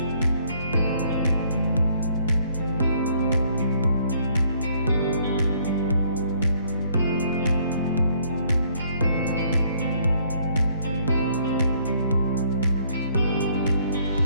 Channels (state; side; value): inverted; both; correlation -0.64